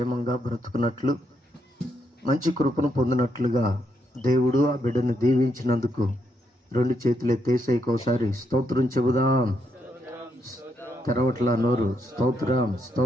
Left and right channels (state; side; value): normal; both; correlation 0.78